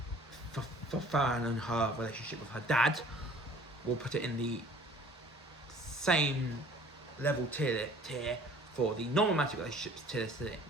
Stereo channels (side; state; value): both; normal; correlation 0.51